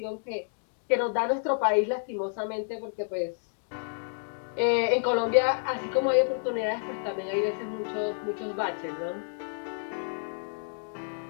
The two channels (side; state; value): right; silent; digital silence